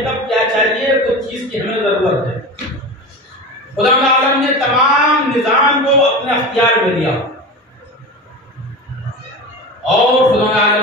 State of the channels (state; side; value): normal; both; correlation 0.28